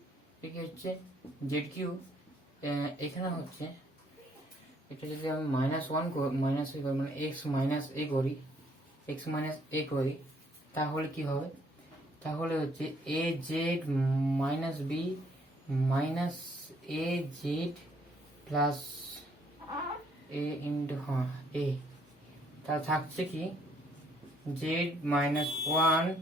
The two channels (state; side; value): normal; both; correlation 0.66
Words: এটা হচ্ছে z কিউব এখানে হচ্ছে এটা যদি আমি মাইনাস a করি মানে x মাইনাস a করি তাহলে কি হবে তাহলে হচ্ছে az minus b minus az plus a into a তা থাকছে কি z মাইনাস 1